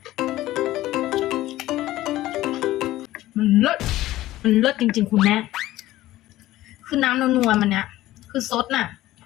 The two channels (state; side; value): quieter; right; 15.7 dB